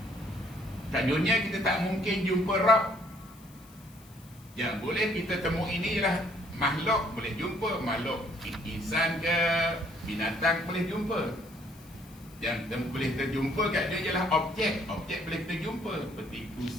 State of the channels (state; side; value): noise; left; hiss, 25 dB below the sound